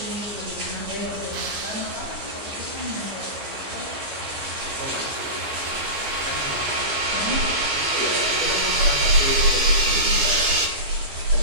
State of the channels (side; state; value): left; late; 15 ms